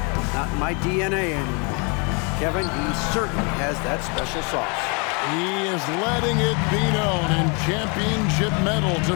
not in my DNA anymore. Kevin, he certainly has that special sauce. He is letting it be known, and championship medal to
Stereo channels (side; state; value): right; quieter; 33.6 dB